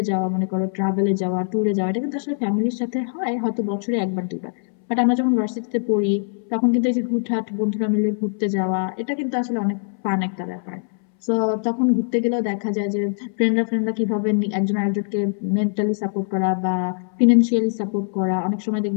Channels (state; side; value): silent; right; 64 dB below the other